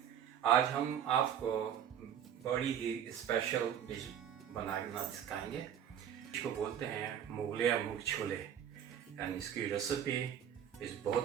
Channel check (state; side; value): quieter; left; 9.4 dB